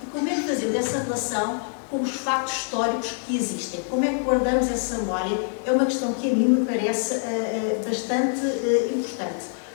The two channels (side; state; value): right; silent; 62 dB below the other